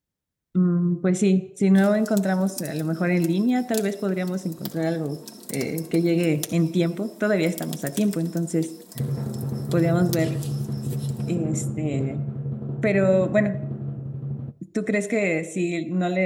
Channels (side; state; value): both; identical; correlation 1.00